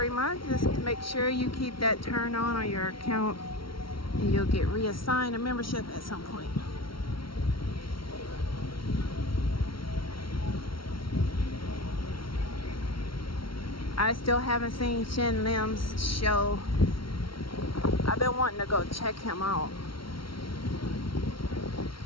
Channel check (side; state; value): right; late; 0.74 ms